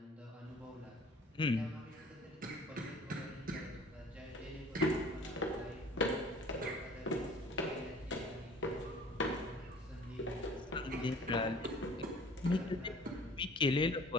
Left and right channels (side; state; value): both; normal; correlation 0.48